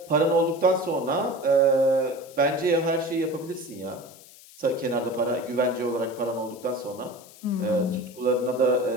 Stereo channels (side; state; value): left; noise; hiss, 21 dB below the sound